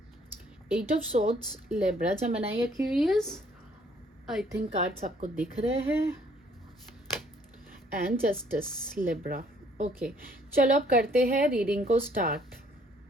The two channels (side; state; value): both; normal; correlation 0.63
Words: 8 of swords, Libra, Gemini, Aquarius. I think cards आपको दिख रहे हैं। And justice, Libra. ओके, चलो अब करते हैं रीडिंग को स्टार्ट।